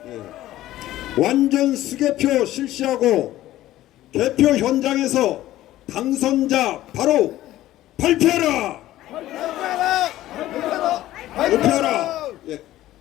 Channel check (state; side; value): quieter; right; 14.7 dB